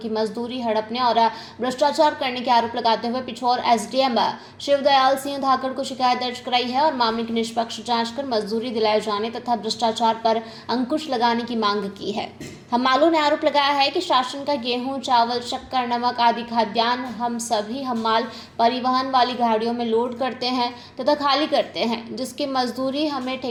मजदूरी हड़पने और भ्रष्टाचार करने के आरोप लगाते हुए पिछोर एसडीएम शिवदयाल सिंह धाकड़ को शिकायत दर्ज कराई है और मामले की निष्पक्ष जांच कर मजदूरी दिलाए जाने तथा भ्रष्टाचार पर अंकुश लगाने की मांग की है। हमालों ने आरोप लगाया है कि शासन का गेहूं, चावल, शक्कर, नमक आदि खाद्यान्न हम सभी हमाल परिवहन वाली गाड़ियों में लोड करते हैं तथा खाली करते हैं, जिसकी मजदूरी हमें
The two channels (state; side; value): identical; both; correlation 1.00